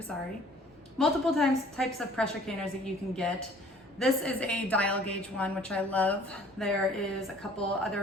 Multiple types of pressure canners that you can get. This is a dial gauge one, which I love. There is a couple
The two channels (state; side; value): normal; both; correlation 0.53